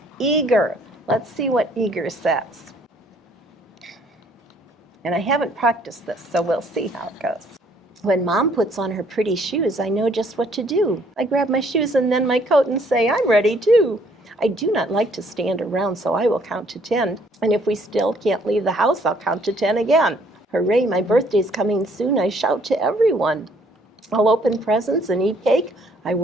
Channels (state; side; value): normal; both; correlation 0.63